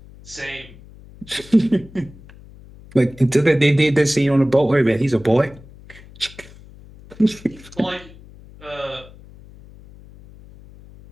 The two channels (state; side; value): noise; left; hum, 21 dB below the sound